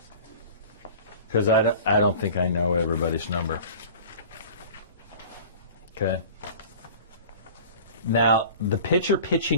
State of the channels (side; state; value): both; inverted; correlation -0.41